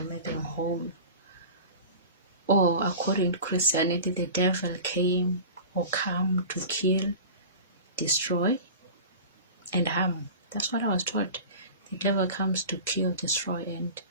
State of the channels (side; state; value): both; inverted; correlation -0.36